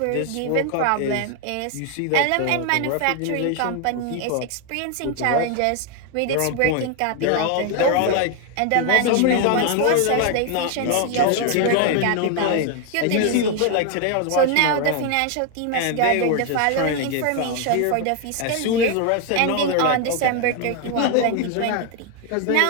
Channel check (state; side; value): different; both; correlation 0.01